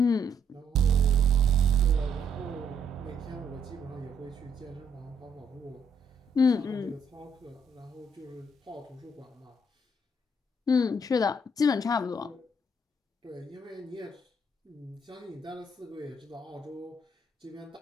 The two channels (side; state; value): both; normal; correlation 0.71